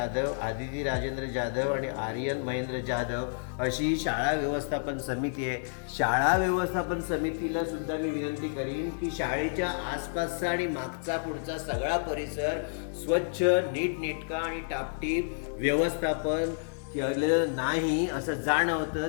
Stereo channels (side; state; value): right; silent; digital silence